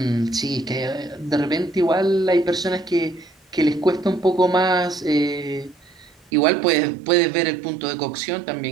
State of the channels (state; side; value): drops out; left; at 6.3 s